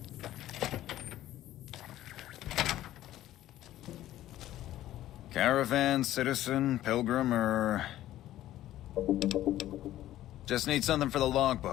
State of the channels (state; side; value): quieter; right; 13.8 dB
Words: Caravan, citizen, pilgrim, or... Just need something for the